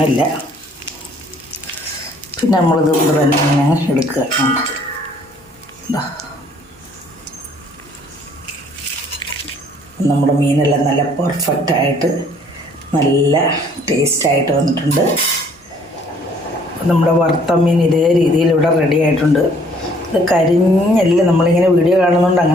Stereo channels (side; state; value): both; normal; correlation 0.61